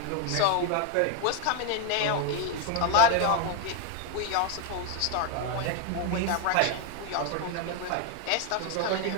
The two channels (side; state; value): both; different; correlation 0.01